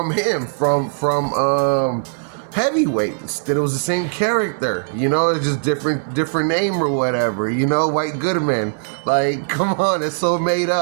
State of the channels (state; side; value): silent; left; 58 dB below the other